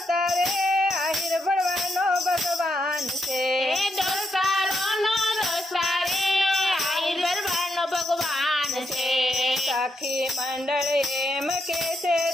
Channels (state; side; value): normal; both; correlation 0.81